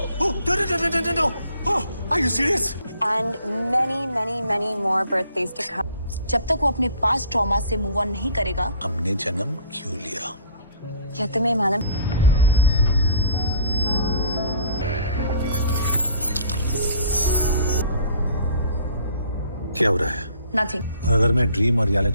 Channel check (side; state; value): both; inverted; correlation -0.52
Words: No. Oh, are you serious? And many more birthdays to come. जब तक वो अपने पास्ट ट्रॉमा से मूव ऑन नहीं करेगा। हमने जन्म क्यों लिया? क्या तुम्हें मालूम? क्या हो रहा है? Nothing. और अगर मैं ड्रीम और